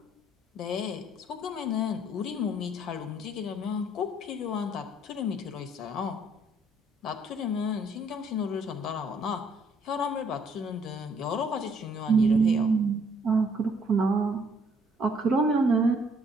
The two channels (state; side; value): normal; both; correlation 0.65